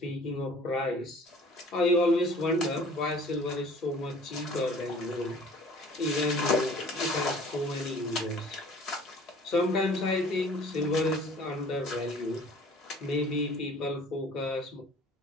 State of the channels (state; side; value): normal; both; correlation 0.50